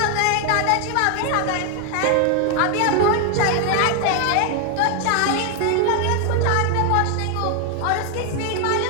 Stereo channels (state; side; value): different; both; correlation 0.01